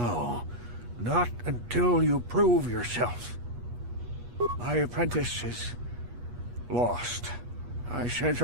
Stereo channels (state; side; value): late; left; 8.3 ms